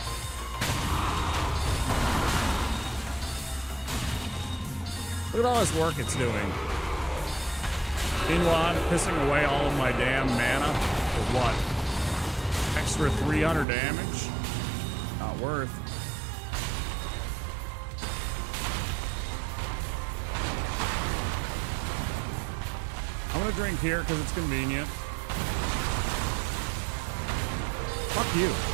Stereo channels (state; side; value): drops out; left; at 13.7 s